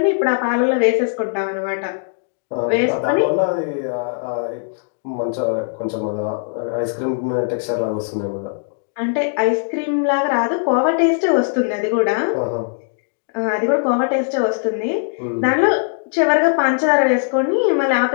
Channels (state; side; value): silent; right; digital silence